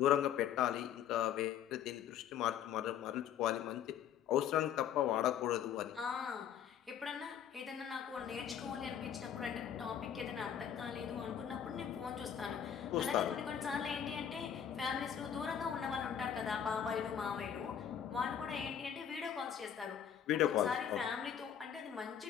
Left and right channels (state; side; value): quieter; right; 9.0 dB